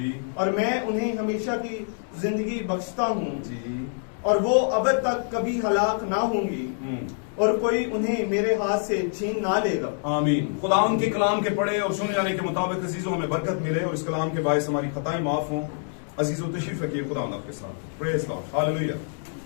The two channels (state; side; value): silent; right; 61 dB below the other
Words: और मैं उन्हें हमेशा की जिंदगी बख्शता हूँ जी, और वो अब तक कभी हलाक ना होंगी। और कोई उन्हें मेरे हाथ से छीन ना लेगा। आमीन। खुदावन के कलाम के पढ़े और सुने जाने के मुताबिक अजीजों हमें बरकत मिले और इस कलाम के बायस हमारी खताएं माफ हों। अजीजों तशरीफ रखिए, खुदावन आपके साथ। Praise Lord, hallelujah.